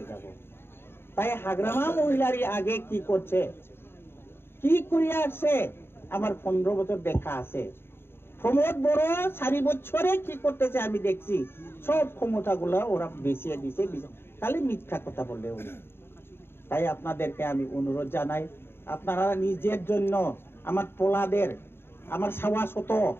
যাব তাই হাগ্রামা মহিলারই আগে কি করছে কি করিয়া আসছে আমার 15 বছর দেখা আছে প্রমোদ বড় 4 বছরে কি করতেছে আমি দেখছি সব ক্ষমতাগুলো ওরা বেশিয়ে দিছে খালি মিথ্যা কথা বললে উনি তাই আপনাদেরকে আমি অনুরোধ জানাই আপনারা নিজের জন্য আমার পোলাদের আমার সাওয়াশত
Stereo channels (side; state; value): right; late; 0.11 ms